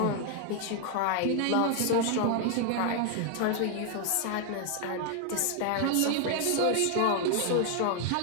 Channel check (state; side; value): different; both; correlation 0.00